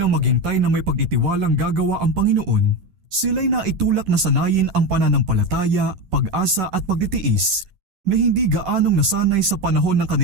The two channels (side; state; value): left; late; 11 ms